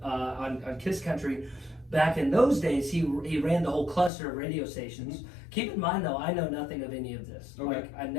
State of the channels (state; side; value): drops out; right; at 4.1 s